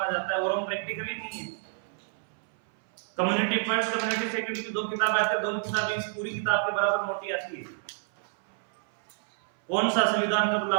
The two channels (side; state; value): left; silent; 59 dB below the other